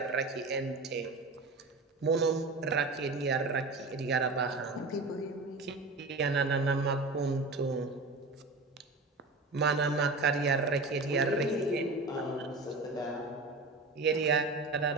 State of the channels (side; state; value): left; quieter; 3.4 dB